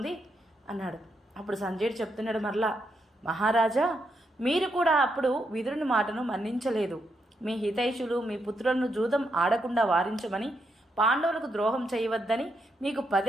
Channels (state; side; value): normal; both; correlation 0.81